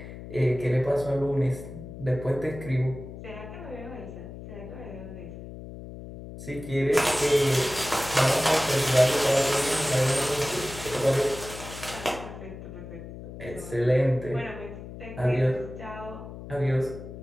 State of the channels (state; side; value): noise; left; hum, 12 dB below the sound